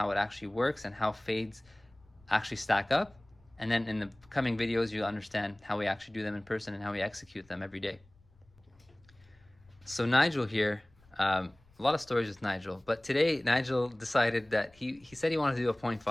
it actually works and how fades actually stack up, and then in the coming videos you'll understand how we actually do them in person and how we execute them every day. So Nigel here, a lot of stories with Nigel, but today Nigel decided that he said he wanted to do a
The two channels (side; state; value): left; noise; rumble, 30 dB below the sound